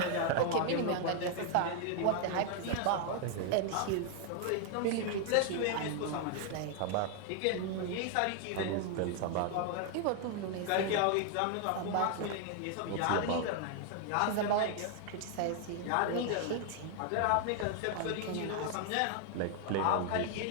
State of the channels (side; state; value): both; different; correlation 0.00